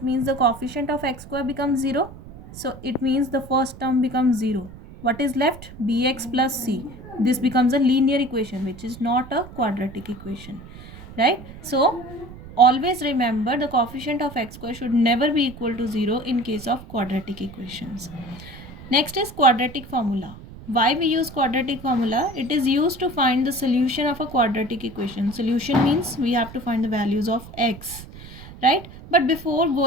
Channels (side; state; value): right; noise; rumble, 16 dB below the sound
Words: means the coefficient of x square becomes 0. So it means the first term becomes 0. What is left? Bx plus c. This becomes a linear equation, which is not a quadratic equation, right? So always remember, the coefficient of x square should never be equal to 0 in case of quadratic equations. Next is quadratic formula. Why we use quadratic formula? It is used to find the solution of a quadratic equation. Solution means we have to find the values of x, right? But before